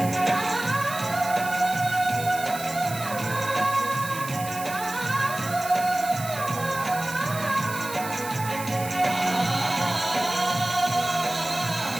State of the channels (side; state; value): right; noise; hiss, 11 dB below the sound